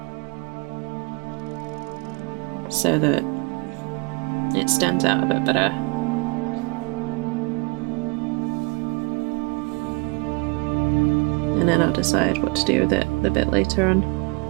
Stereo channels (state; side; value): quieter; left; 29.3 dB